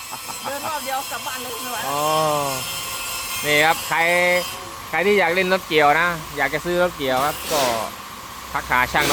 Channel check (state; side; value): identical; both; correlation 1.00